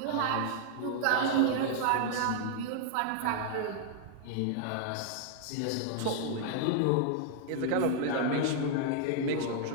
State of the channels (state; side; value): different; both; correlation 0.00